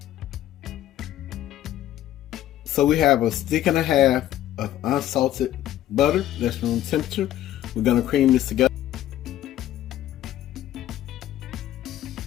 So we have a stick and a half of unsalted butter that's room temperature. We're gonna cream this together.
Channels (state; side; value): quieter; right; 12.7 dB